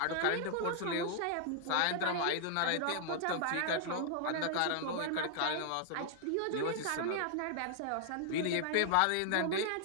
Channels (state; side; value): different; both; correlation 0.00